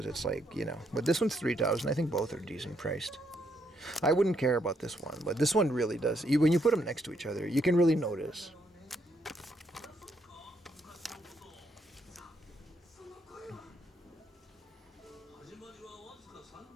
it's like, you know. But this one's 3,000. I think both are decent priced. I wouldn't care about this one, but this one really does. When you put them next to each other, you can really notice.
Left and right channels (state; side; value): normal; both; correlation 0.75